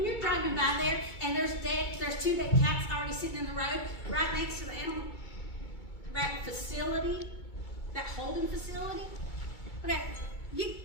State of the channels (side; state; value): right; late; 2.3 ms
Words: you're driving by there and there's two dead cats already sitting in the road right next to the animal, that facility, that holding facility. Okay,